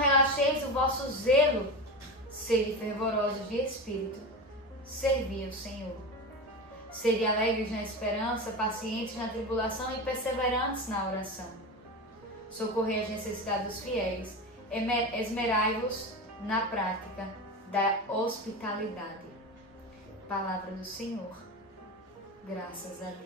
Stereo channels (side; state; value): both; normal; correlation 0.23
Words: o vosso zelo. Sede fervorosos de espírito. Servi ao Senhor. Sede alegres na esperança, pacientes na tribulação e perseverantes na oração. Socorrei as necessidades dos fiéis. Esmerai-vos na prática da hospitalidade. Palavra do Senhor. Graças a